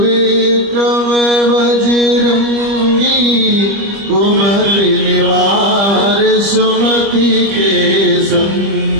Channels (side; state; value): left; late; 25 ms